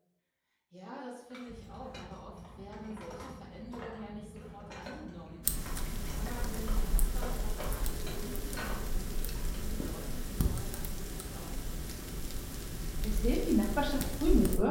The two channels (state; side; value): identical; both; correlation 1.00